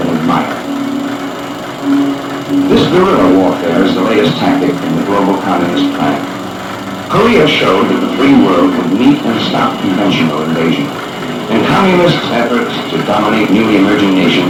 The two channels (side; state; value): both; identical; correlation 1.00